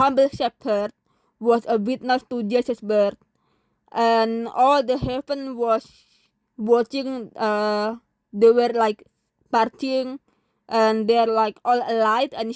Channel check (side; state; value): both; identical; correlation 1.00